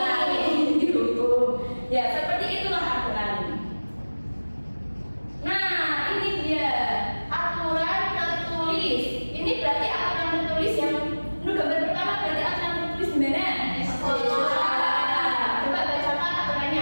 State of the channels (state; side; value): inverted; both; correlation -1.00